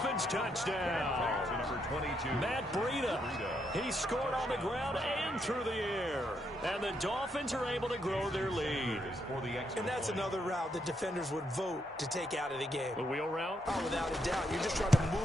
touchdown. Number 22. Matt Breida. He scored on the ground and through the air. And the Dolphins are able to grow their lead. And that's another route that defenders would vote to take out of the game. The wheel route? Oh, without a doubt. You're just trying to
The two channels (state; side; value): normal; both; correlation 0.78